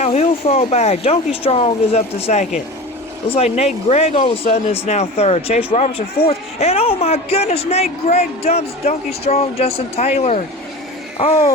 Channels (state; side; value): normal; both; correlation 0.32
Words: he'll fall back. Donkey Strong is up to second. Looks like Nate Gregg all of a sudden is now third. Chase Robertson fourth. And oh my goodness, Nate Gregg dumps Donkey Strong, Justin Taylor.